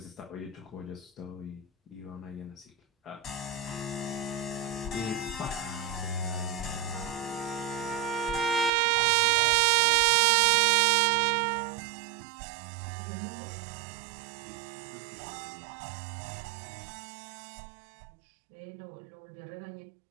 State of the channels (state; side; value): drops out; left; at 8.7 s